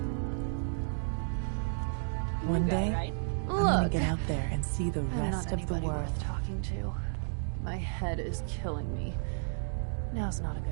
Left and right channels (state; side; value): silent; left; digital silence